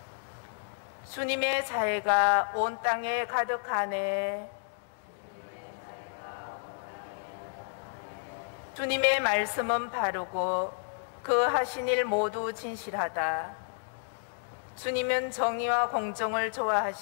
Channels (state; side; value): silent; right; digital silence